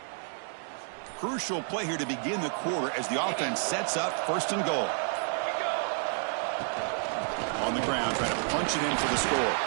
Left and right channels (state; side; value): silent; left; 56 dB below the other